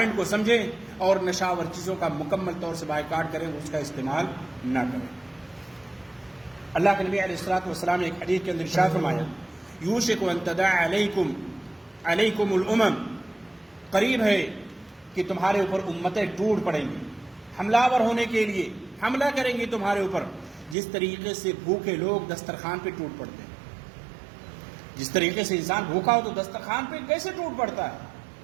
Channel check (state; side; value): drops out; left; at 20.8 s